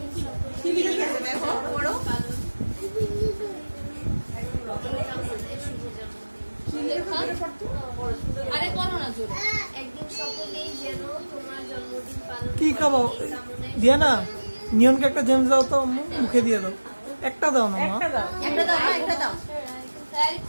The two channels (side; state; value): both; inverted; correlation -1.00